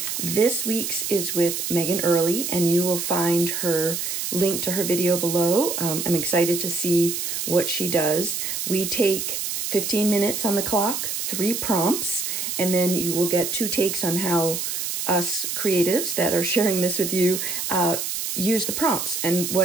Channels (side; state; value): right; noise; hiss, 3 dB below the sound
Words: This week's is with Meghann Early, and you will find her link to her video below. I'm excited to see what she does. We take 15 minutes on the clock, 3 prompts, and then you will get 2 takes on how us creatives that are sharing this with you use the prompts and